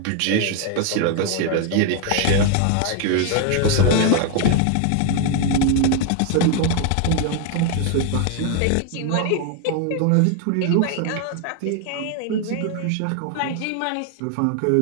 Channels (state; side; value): different; both; correlation 0.00